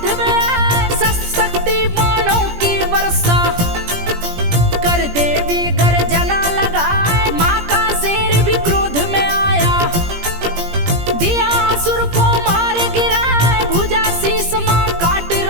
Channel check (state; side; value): late; left; 17 ms